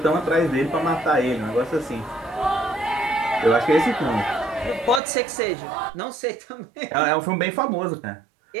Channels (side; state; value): left; drops out; at 5.0 s